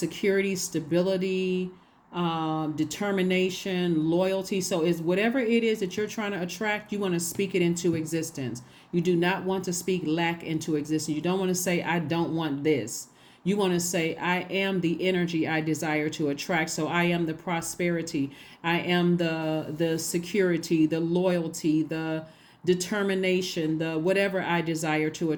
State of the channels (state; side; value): identical; both; correlation 1.00